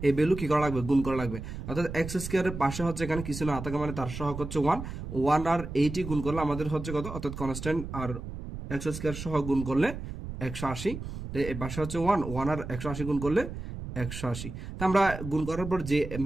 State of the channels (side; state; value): right; noise; rumble, 8 dB below the sound